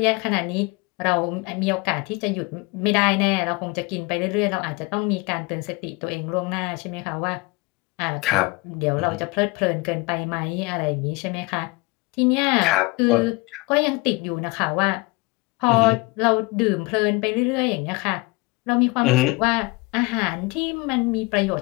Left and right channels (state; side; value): quieter; right; 25.1 dB